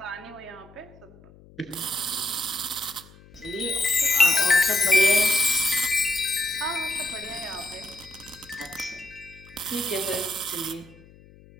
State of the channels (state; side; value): noise; left; hum, 24 dB below the sound